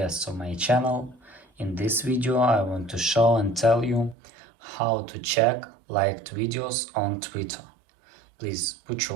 of my channel. In this video I want to show and tell you how to check liked videos on Twitter. Please put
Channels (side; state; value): left; drops out; at 4.2 s